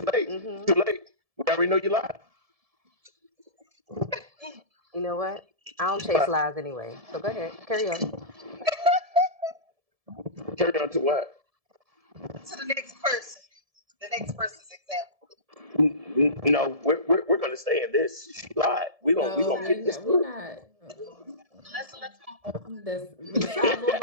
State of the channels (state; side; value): late; left; 1.7 ms